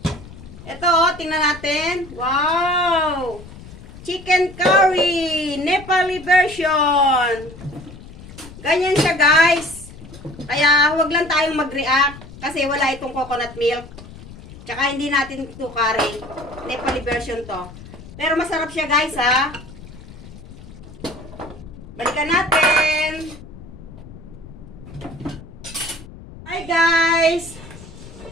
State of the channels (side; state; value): left; noise; rumble, 17 dB below the sound